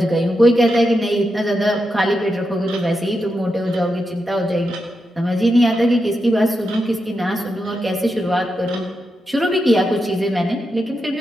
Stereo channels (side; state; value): both; normal; correlation 0.86